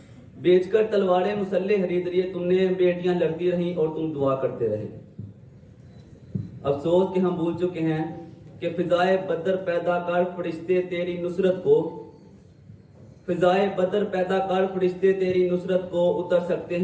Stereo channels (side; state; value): both; identical; correlation 1.00